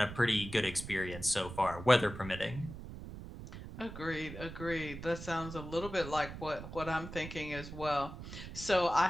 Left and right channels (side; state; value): right; noise; rumble, 11 dB below the sound